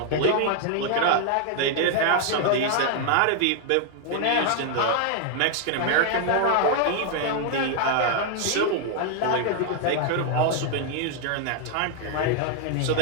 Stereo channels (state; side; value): different; both; correlation 0.00